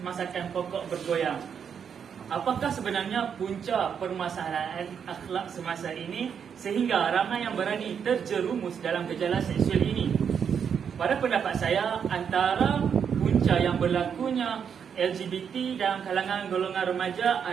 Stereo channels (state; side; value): quieter; left; 7.4 dB